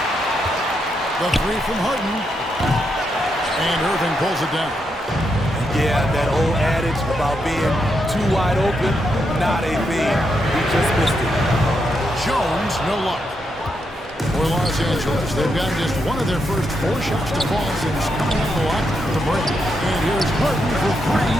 The 3 from Harden. And Irving pulls it down. Yeah, that old adage about being too wide open, not a thing. He just missed it. Jones, no luck. For Los Angeles, they've gotten just one of their first 4 shots to fall since coming up the line to break. And here's Harden for 3.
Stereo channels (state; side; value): normal; both; correlation 0.82